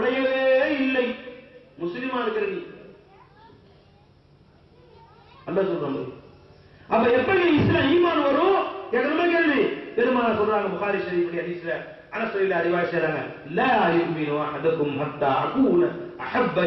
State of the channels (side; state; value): both; identical; correlation 1.00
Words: இல்லை. முஸ்லிமா இருக்கிறீங்க. அல்லாஹ் சொல்றாங்க. அப்ப எப்படி இஸ்லாம் ஈமான் வரும்? கேக்குறமா கேள்வி. பெருமானார் சொல்றாங்க புகாரி ஷரீஃப் ஹதீஸ்ல, அனஸ் ரலியல்லாஹு அன்ஹு அறிவாய்ச்சாங்க, லா யுமினு அஹதுக்கும் ஹத்தா அகூன அஹப்ப